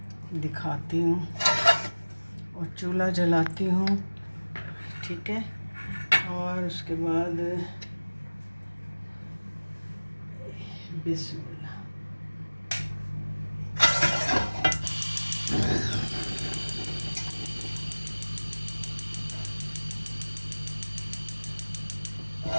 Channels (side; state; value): both; inverted; correlation -1.00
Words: दिखाती हूँ और चूल्हा जलाती हूँ। ठीक है। और उसके बाद बिस्मिल्लाह,